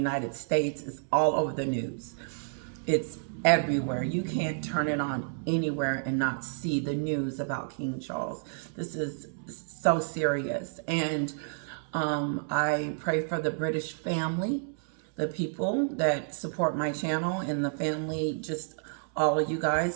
States is all over the news. It's everywhere. You can't turn it on anywhere and not see the news about King Charles. This is so serious. And I pray for the British family, the people that support my channel, and the family, just all of you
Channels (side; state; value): left; silent; 58 dB below the other